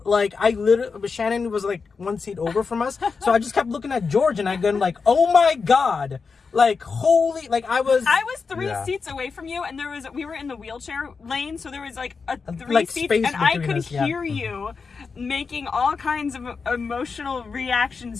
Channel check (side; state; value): right; quieter; 5.0 dB